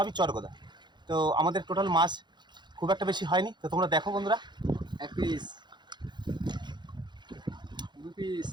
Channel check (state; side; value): late; left; 0.22 ms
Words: চরগোদা। তো আমাদের টোটাল মাছ খুব একটা বেশি হয়নি। তো তোমরা দেখো বন্ধুরা, এক পিস, দু পিস,